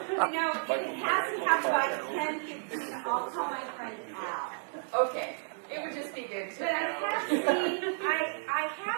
If it has to happen by 10:15, I'll call my friend Al. Okay. It would just be good to But I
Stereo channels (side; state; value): left; silent; digital silence